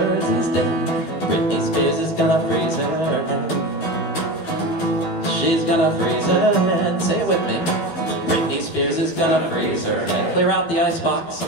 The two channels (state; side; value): late; right; 12 ms